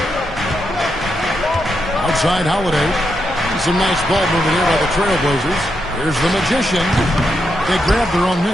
Outside Holiday. Some nice ball movement here by the Trailblazers. Here's the Magician. They grab their own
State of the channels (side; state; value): both; normal; correlation 0.83